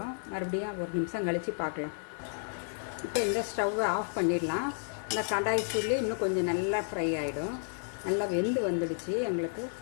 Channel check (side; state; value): right; silent; digital silence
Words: மறுபடியும் ஒரு நிமிஷம் கழித்து பார்க்கலாம். இப்போ இந்த ஸ்டவ்வை ஆஃப் பண்ணிடலாம். இந்த கடாய் சூட்லேயே இன்னும் கொஞ்சம் நல்லா ஃப்ரை ஆகிடும். நல்லா வெந்து வந்துடுச்சு. எங்களுக்கு